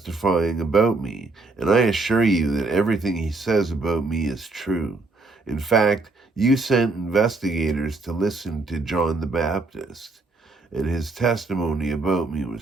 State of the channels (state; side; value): quieter; left; 3.4 dB